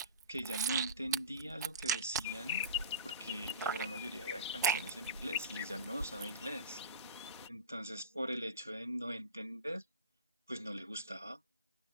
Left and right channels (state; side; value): inverted; both; correlation -0.33